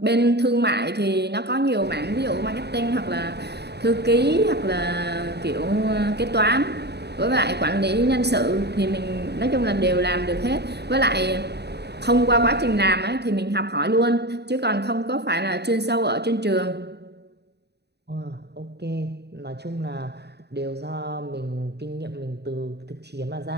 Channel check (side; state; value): left; late; 0.48 ms